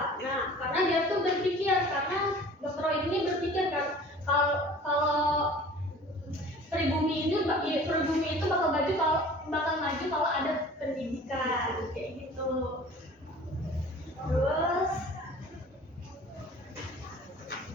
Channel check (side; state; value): both; normal; correlation 0.45